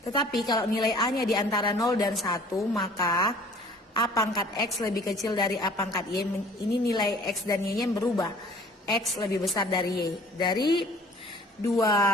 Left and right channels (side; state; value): both; normal; correlation 0.51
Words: Tetapi kalau nilai A-nya di antara 0 dan 1, maka A pangkat X lebih kecil dari A pangkat Y. Ini nilai X dan Y-nya berubah. X lebih besar dari Y. Dari dua